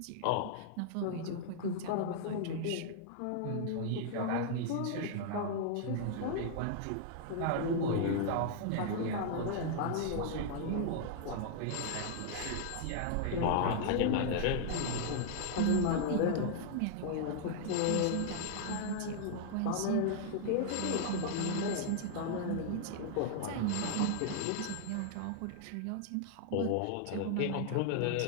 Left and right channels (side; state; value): both; different; correlation -0.01